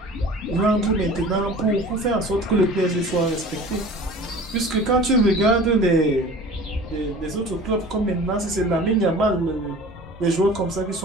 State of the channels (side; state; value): both; normal; correlation 0.42